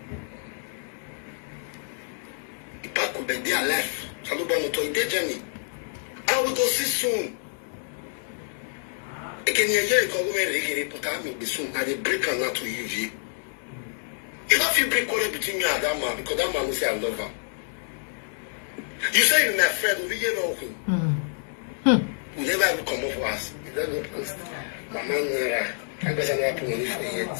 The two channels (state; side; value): silent; right; digital silence